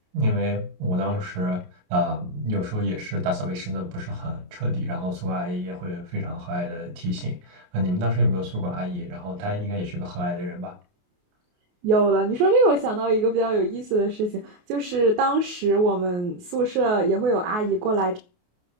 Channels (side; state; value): left; late; 28 ms